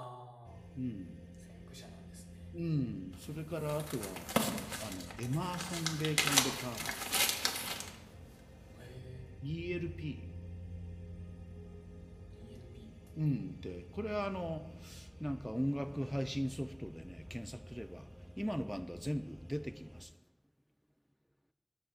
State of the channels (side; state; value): both; identical; correlation 1.00